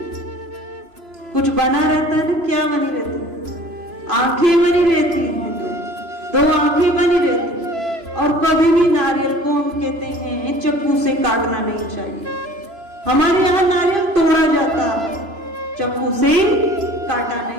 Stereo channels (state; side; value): late; left; 3.0 ms